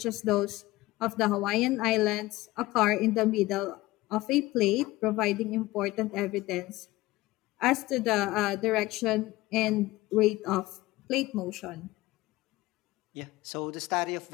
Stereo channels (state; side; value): quieter; right; 18.8 dB